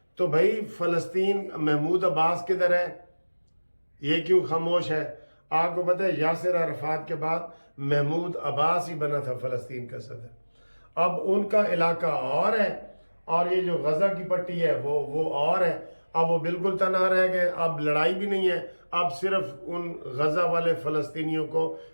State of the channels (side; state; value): both; inverted; correlation -1.00